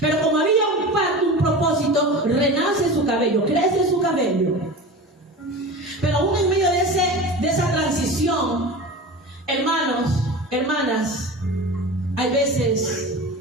como había un pacto, un propósito, renace su cabello, crece su cabello. Pero aún en medio de esa transición, hermanos, hermanas, hay veces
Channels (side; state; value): both; normal; correlation 0.32